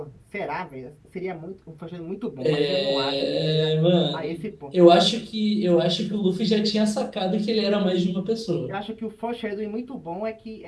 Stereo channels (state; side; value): identical; both; correlation 1.00